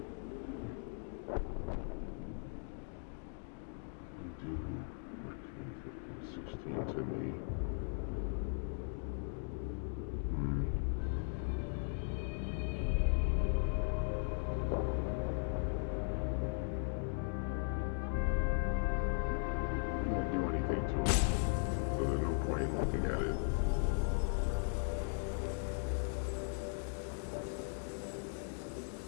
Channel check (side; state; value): right; silent; 52 dB below the other